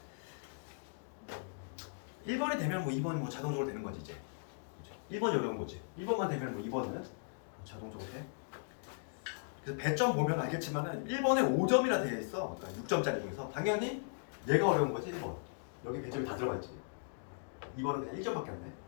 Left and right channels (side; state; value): right; silent; digital silence